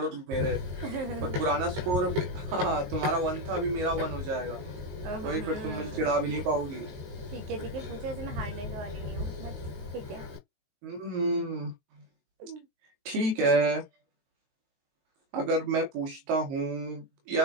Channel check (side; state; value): left; late; 19 ms